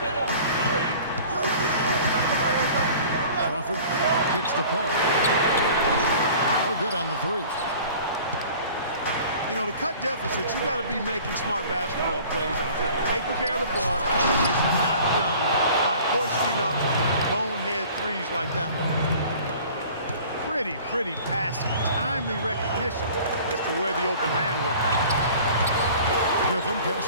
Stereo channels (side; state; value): both; inverted; correlation -0.46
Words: Crawford kicks to Paul. No good on the three. You know, to cut deficits, you got to be making smart basketball plays out there. Taking care of the ball is not done by hoisting up bonehead threes like that. Pretty passing, timely recognition as to where the open man was. Griffin pass